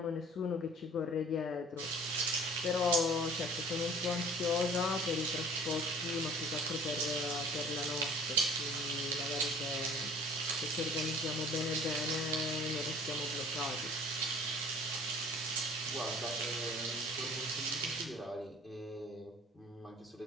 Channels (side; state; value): both; normal; correlation 0.49